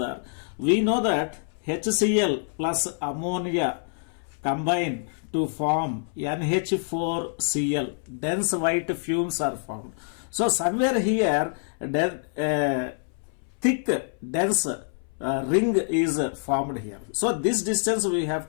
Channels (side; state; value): right; silent; 61 dB below the other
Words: we know that HCl plus ammonia combine to form NH4Cl. Dense white fumes are formed. So somewhere here, thick dense ring is formed here. So this distance we have